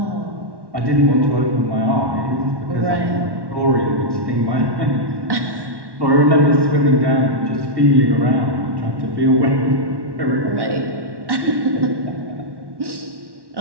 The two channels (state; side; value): late; left; 1.1 ms